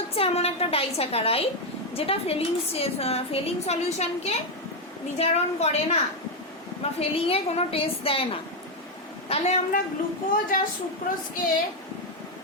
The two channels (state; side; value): normal; both; correlation 0.04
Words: এমন একটা ডাইস্যাকারাইড যেটা ফেলিং সলিউশনকে বিজারণ করে না বা ফেলিংয়ে কোনো টেস্ট দেয় না। তাহলে আমরা গ্লুকোজ আর সুক্রোজকে